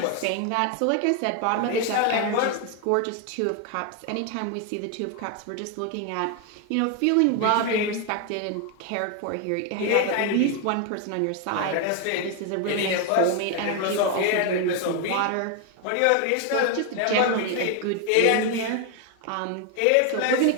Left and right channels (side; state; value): both; different; correlation 0.01